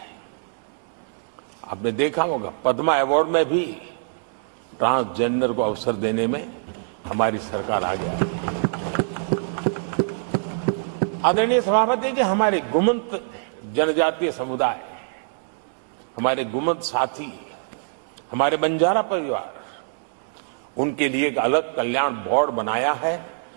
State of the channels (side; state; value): left; silent; digital silence